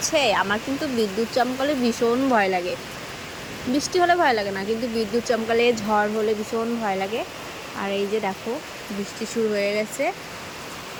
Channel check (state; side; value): identical; both; correlation 1.00